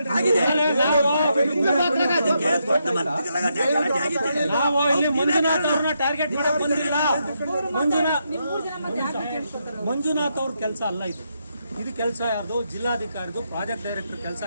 ನಾವು ಇಲ್ಲಿ ಮಂಜುನಾಥ್ ಅವ್ರನ್ನ ಟಾರ್ಗೆಟ್ ಮಾಡಕ್ ಬಂದಿಲ್ಲ. ಮಂಜುನಾಥ್ ಅವ್ರ ಕೆಲಸ ಅಲ್ಲ ಇದು ಕೆಲಸ ಯಾರ್ದು? ಜಿಲ್ಲಾಧಿಕಾರಿದು, ಪ್ರಾಜೆಕ್ಟ್ ಡೈರೆಕ್ಟರ್ ಕೆಲಸ.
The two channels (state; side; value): inverted; both; correlation -0.81